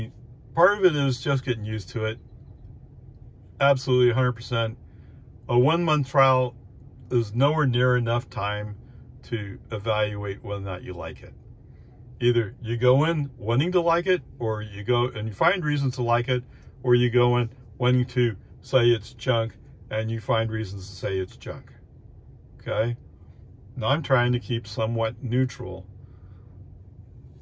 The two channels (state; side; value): identical; both; correlation 1.00